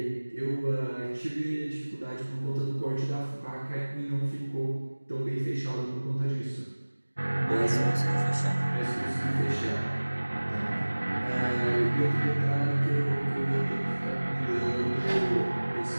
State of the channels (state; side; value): inverted; both; correlation -1.00